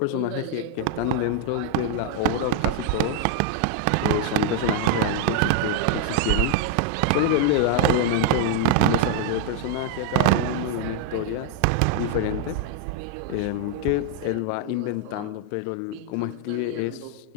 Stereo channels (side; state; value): both; different; correlation 0.00